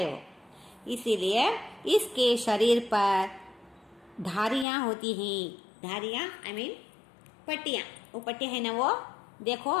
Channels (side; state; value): right; drops out; at 4.7 s